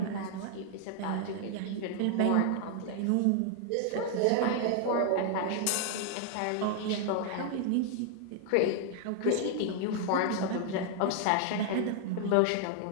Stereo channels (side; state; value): both; different; correlation 0.00